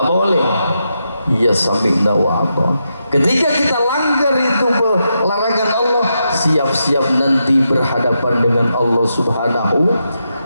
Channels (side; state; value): both; inverted; correlation -0.85